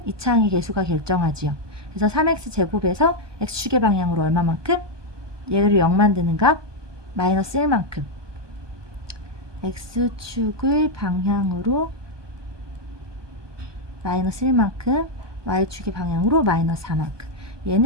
2차항의 개수가 결정하지요. 그래서 3x제곱에서 x축의 방향으로 얼마만큼? 얘를 0 만드는 값 마이너스 1만큼. x축의 방향으로 마이너스 1만큼, y축의 방향으로 마이너스 4만큼.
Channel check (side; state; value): left; late; 1.2 ms